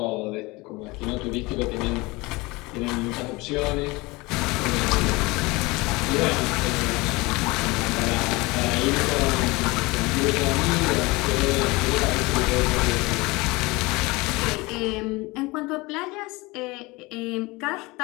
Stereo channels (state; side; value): quieter; right; 23.4 dB